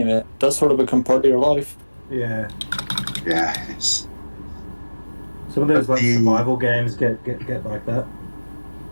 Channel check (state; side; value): inverted; both; correlation -1.00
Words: it does sort of become part of your life. Yeah, Yeah, it's... some of those like The- survival games get like that.